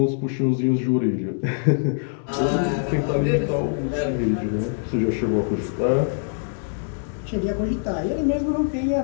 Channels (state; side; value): silent; right; 63 dB below the other